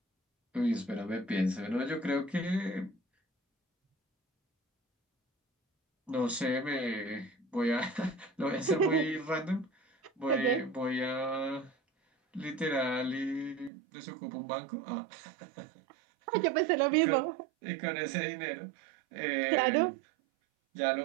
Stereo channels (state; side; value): drops out; left; at 13.7 s